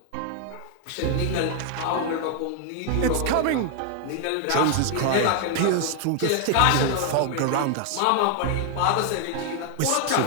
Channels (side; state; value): both; different; correlation 0.01